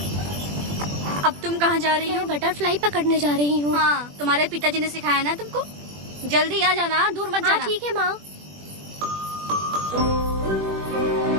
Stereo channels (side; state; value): left; late; 21 ms